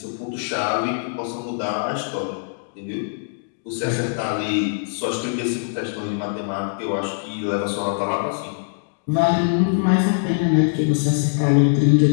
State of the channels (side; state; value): right; silent; digital silence